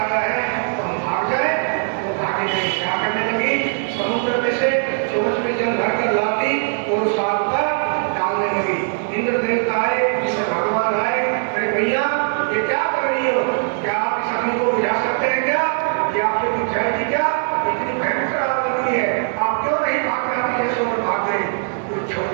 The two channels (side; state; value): left; silent; digital silence